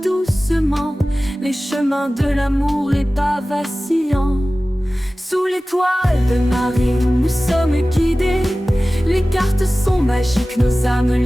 doucement les chemins de l'amour, les pas vacillants. Sous l'étoile de Marie, nous sommes guidés. Les cartes sont magiques, nos âmes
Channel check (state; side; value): normal; both; correlation 0.97